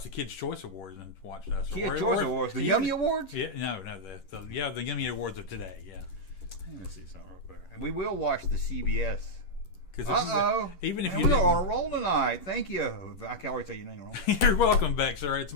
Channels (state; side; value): late; right; 11 ms